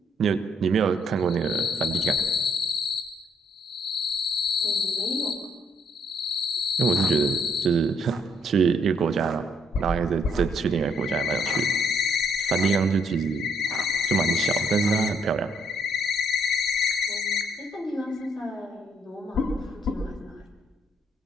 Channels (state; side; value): normal; both; correlation 0.70